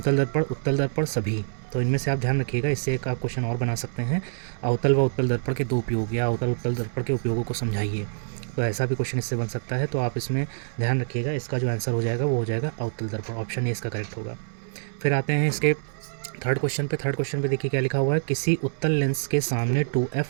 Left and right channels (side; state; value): left; silent; digital silence